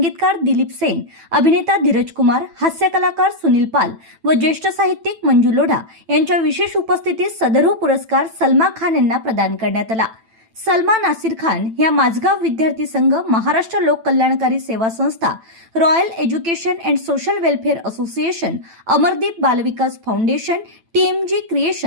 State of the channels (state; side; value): late; left; 9.0 ms